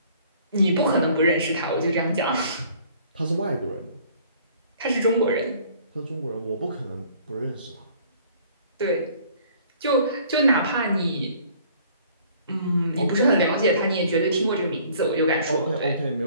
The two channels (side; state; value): both; inverted; correlation -0.56